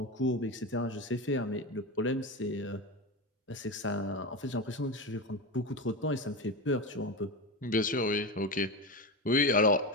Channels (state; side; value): normal; both; correlation 0.18